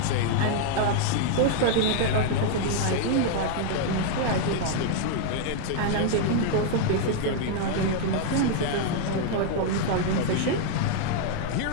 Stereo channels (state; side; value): different; both; correlation 0.00